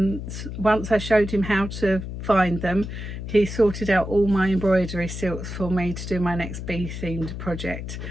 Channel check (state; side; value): noise; left; hum, 7 dB below the sound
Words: once I showed him how to find them, he sorted out all my embroidery silks for me to do my next bee themed project,